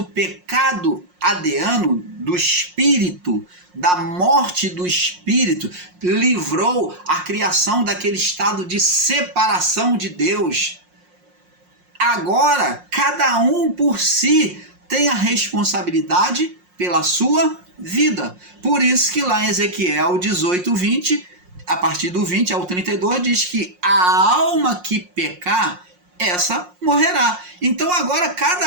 pecado adeano do espírito, da morte do espírito, livrou a criação daquele estado de separação de Deus. Agora, cada um por si tem a responsabilidade pela sua vida. Por isso que lá em Ezequiel 18, 20, a partir do 20 ao 32, diz que a alma que pecar, essa morrerá. Então agora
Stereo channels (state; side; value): late; left; 5.6 ms